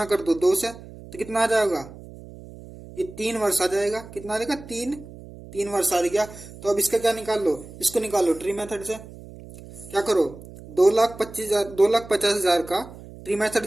कर दो 2 से, तो कितना आ जाएगा, ये 3 वर्ष आ जाएगा। कितना आ जाएगा, 3 वर्ष आ गया। तो अब इसका क्या निकाल लो, इसको निकाल लो ट्री मेथड से। क्या करो, 2,50,000 का ट्री मेथड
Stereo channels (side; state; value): right; noise; hum, 17 dB below the sound